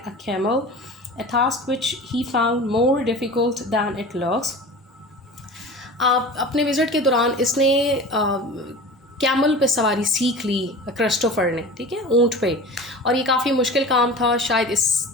a camel, a task which he found more difficult than it looks. अपने विज़िट के दौरान इसने कैमल पे सवारी सीख ली क्रिस्टोफर ने, ठीक है, ऊँट पे। और ये काफ़ी मुश्किल काम था, शायद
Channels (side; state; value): both; normal; correlation 0.36